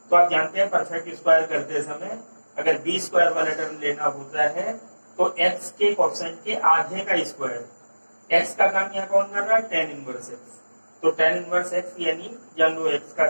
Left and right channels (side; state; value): both; inverted; correlation -1.00